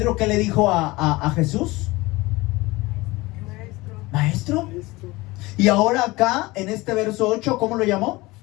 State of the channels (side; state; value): right; quieter; 21.3 dB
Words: ¿qué le dijo a Jesús? Maestro. Y ahora acá, en este verso 8, ¿cómo lo llamó?